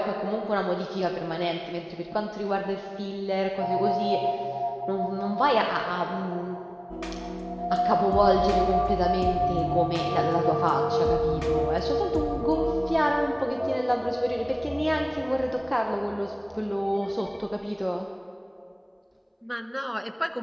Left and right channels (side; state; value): both; identical; correlation 1.00